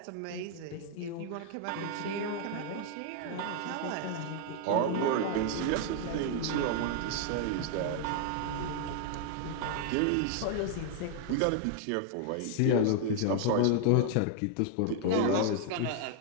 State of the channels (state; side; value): different; both; correlation 0.00